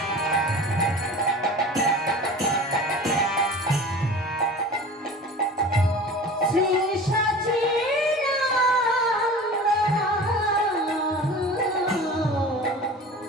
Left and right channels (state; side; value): normal; both; correlation 0.38